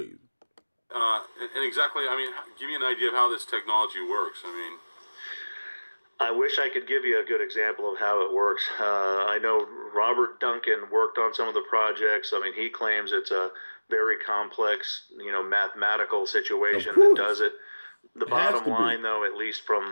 And exactly, I mean, give me an idea of how this technology works. I mean, I wish I could give you a good example of how it works. I know Robert Duncan worked on some of the projects. I mean, he claims it's a very complex, mathematical situation that does it. The bottom line, though, at least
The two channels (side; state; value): both; inverted; correlation -1.00